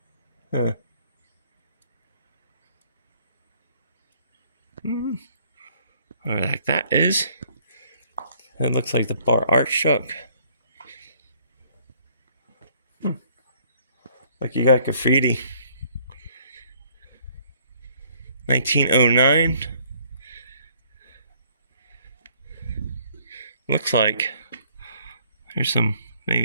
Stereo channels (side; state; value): both; inverted; correlation -0.62